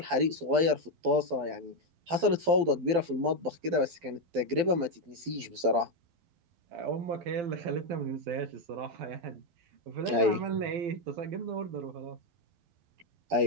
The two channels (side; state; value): left; late; 12 ms